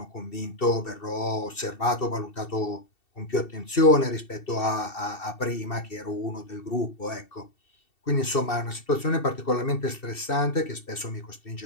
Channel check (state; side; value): late; right; 2.7 ms